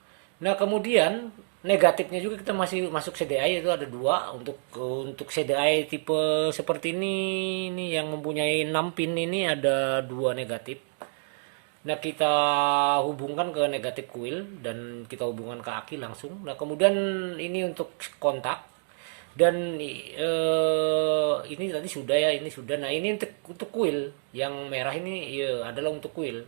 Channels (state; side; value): silent; left; digital silence